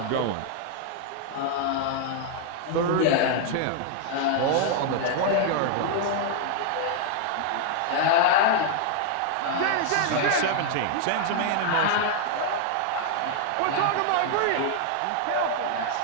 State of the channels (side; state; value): both; different; correlation 0.00